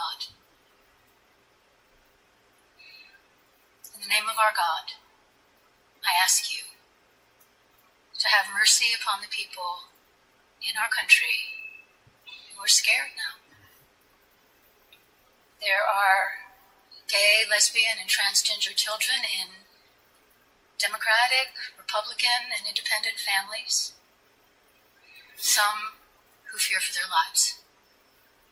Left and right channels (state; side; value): identical; both; correlation 1.00